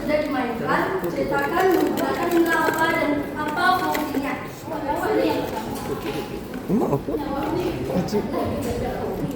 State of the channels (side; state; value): both; identical; correlation 1.00